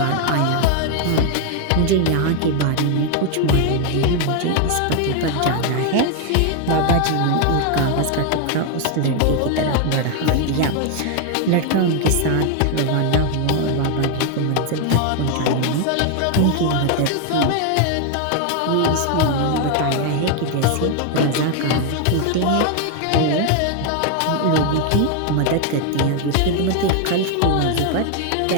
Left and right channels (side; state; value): both; different; correlation 0.00